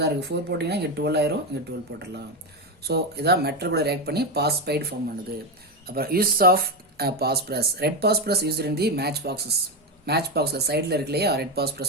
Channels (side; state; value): both; normal; correlation 0.11